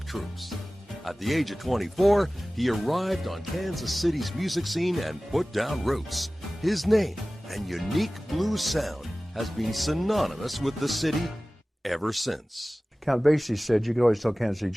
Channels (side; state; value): both; normal; correlation 0.97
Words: troupes. At the age of 24, he arrived on Kansas City's music scene and put down roots. His name and unique blues sound has been synonymous with the city ever since. Count Basie said you could always tell Kansas City